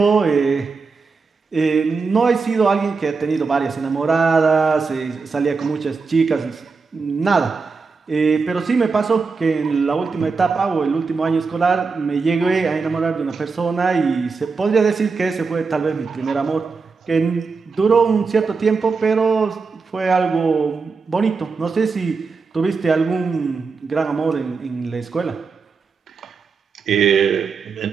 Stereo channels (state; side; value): quieter; left; 4.7 dB